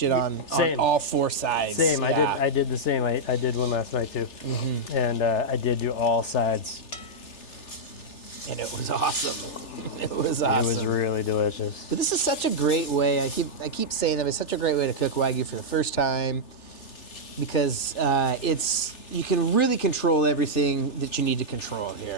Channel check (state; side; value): late; right; 3.4 ms